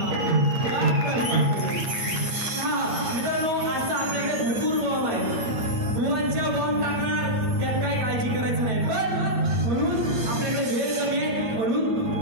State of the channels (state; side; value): late; left; 9.2 ms